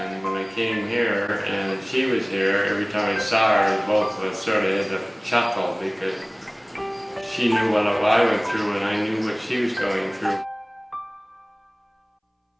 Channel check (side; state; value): both; identical; correlation 1.00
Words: when I came here and she was here, every time I saw her, both of us sort of had a chuckle because she knew what I went through and I knew what she was going through.